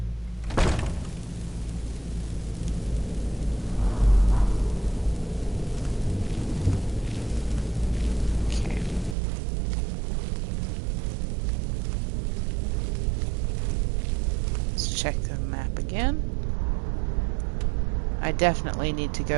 Okay. Let's check the map again. I definitely need to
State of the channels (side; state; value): left; drops out; at 9.2 s